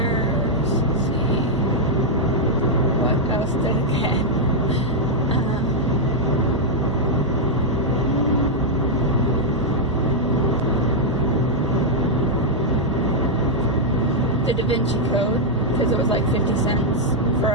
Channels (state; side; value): normal; both; correlation -0.03